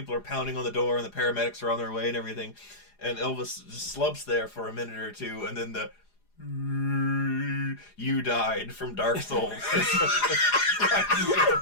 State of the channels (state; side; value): late; right; 4.9 ms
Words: are pounding on the door and the paramedics are on their way and everything, and Elvis just slumps there for a minute or two, and then the "You died" from Dark Souls